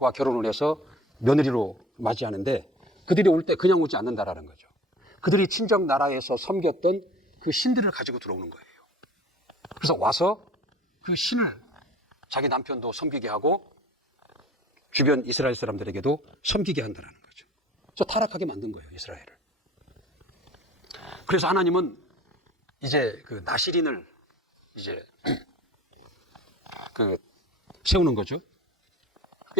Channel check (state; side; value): normal; both; correlation 0.45